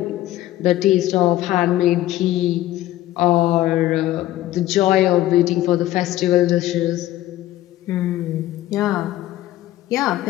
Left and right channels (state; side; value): quieter; right; 14.7 dB